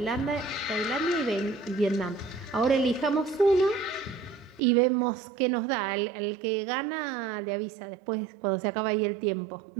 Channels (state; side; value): drops out; left; at 4.6 s